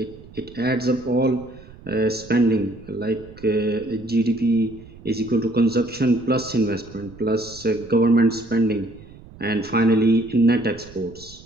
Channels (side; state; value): right; noise; rumble, 20 dB below the sound